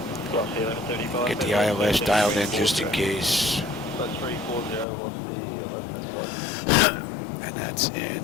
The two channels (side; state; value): right; drops out; at 4.9 s